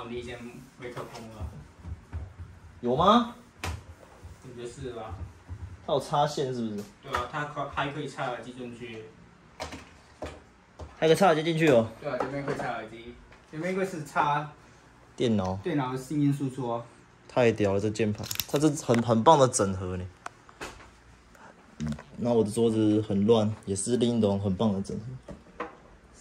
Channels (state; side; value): identical; both; correlation 1.00